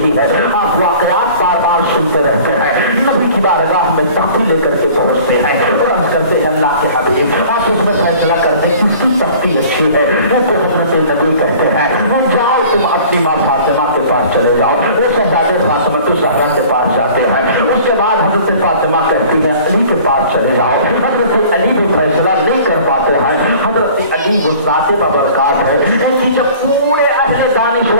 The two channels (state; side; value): inverted; both; correlation -0.47